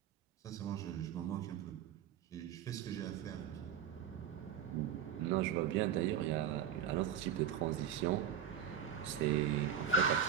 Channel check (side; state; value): left; quieter; 8.9 dB